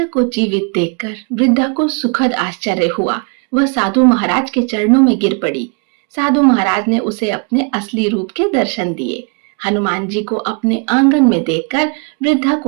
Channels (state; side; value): quieter; left; 34.6 dB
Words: को जीवित देखकर वृद्धा को सुखद आश्चर्य हुआ। वह साधु महाराज के चरणों में गिर पड़ी। साधु महाराज ने उसे अपने असली रूप के दर्शन दिए। हनुमान जी को अपने आंगन में देखकर वृद्धा